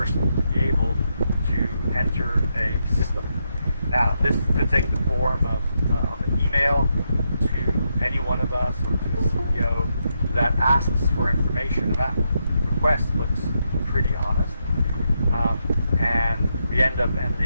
to be able to enter a system. Now, this could take the form of an email to any one of us or to the CEO that asks for information. That request looks pretty honest, and we end up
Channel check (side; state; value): both; inverted; correlation -0.81